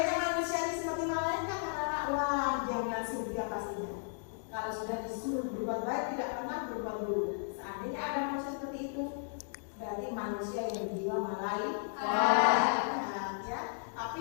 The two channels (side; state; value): right; silent; digital silence